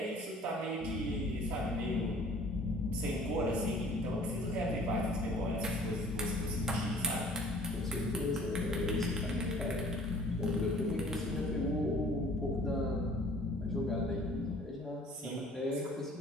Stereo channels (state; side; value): normal; both; correlation 0.52